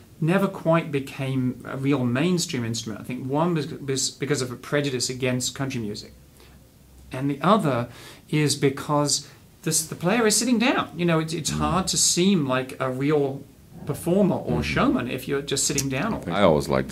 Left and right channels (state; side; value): identical; both; correlation 1.00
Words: never quite became a real mainstream instrument. I think one was because of a prejudice against country music, and the other is because the player is sitting down. You know, it's hard to seem like a real performer or showman if you're just sitting down all the time. I always like